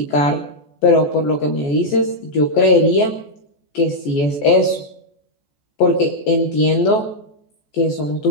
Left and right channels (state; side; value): late; right; 14 ms